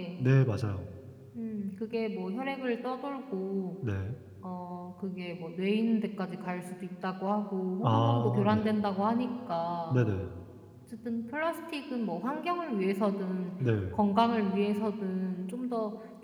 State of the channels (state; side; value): identical; both; correlation 1.00